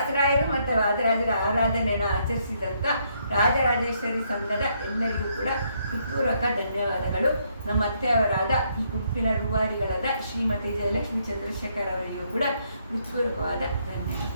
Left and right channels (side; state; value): both; inverted; correlation -0.73